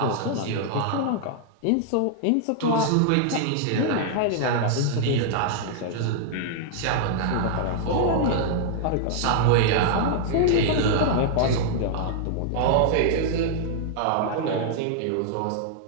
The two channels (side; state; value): both; different; correlation -0.01